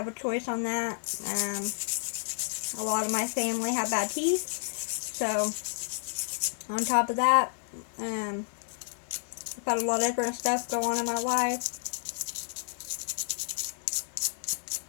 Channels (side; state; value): right; silent; 57 dB below the other